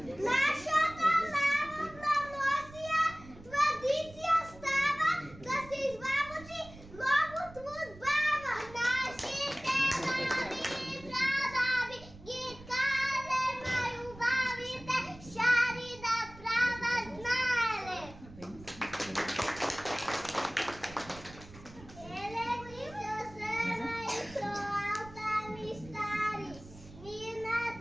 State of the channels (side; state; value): right; noise; rumble, 19 dB below the sound